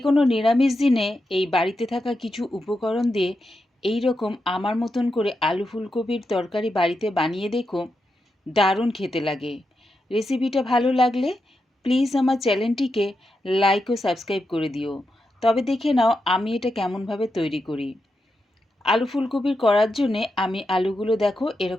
কোনো নিরামিষ দিনে এই বাড়িতে থাকা কিছু উপকরণ দিয়ে এই রকম আমার মতন করে আলু ফুলকপির তরকারি বাড়িতে বানিয়ে দেখো, দারুণ খেতে লাগে। রেসিপিটা ভালো লাগলে প্লিজ আমার চ্যানেলটিকে লাইক ও সাবস্ক্রাইব করে দিও। তবে দেখে নাও আমি এটা কেমনভাবে তৈরি করি। আলু ফুলকপির করার জন্যে আমি আলুগুলো দেখো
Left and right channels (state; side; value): normal; both; correlation 0.87